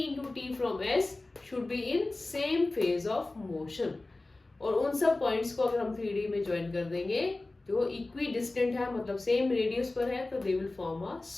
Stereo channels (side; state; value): right; quieter; 3.0 dB